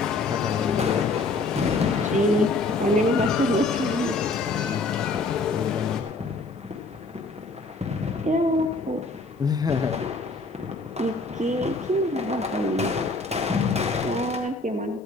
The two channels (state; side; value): quieter; right; 3.3 dB